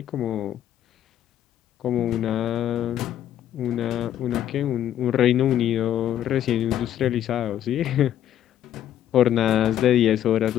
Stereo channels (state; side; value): quieter; right; 11.1 dB